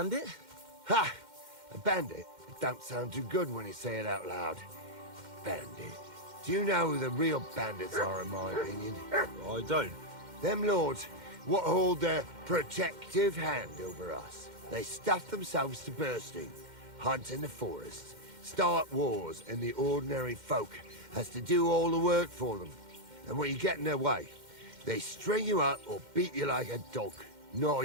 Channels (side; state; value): left; late; 2.1 ms